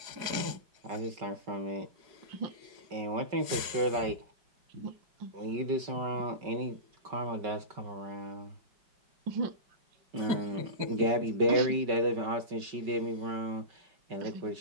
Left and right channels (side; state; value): left; late; 5.3 ms